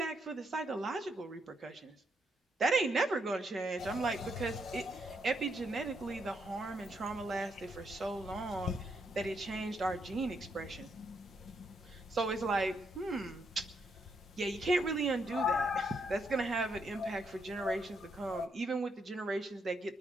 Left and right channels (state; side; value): normal; both; correlation 0.77